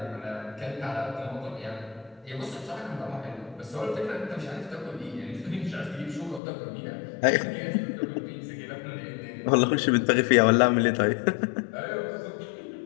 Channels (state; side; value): drops out; right; at 6.4 s